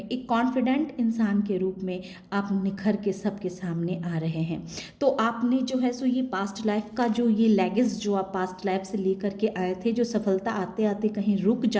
एक कॉन्फिडेंट इंसान के रूप में आप निखर के सबके सामने आ रहे हैं। तो आपने जो है सो ये पास्ट लाइफ का जो ये लेगेस जो आप पास्ट लाइफ से लेकर के आए थे, जो सफलता आते आते कहीं रुक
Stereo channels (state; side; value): identical; both; correlation 1.00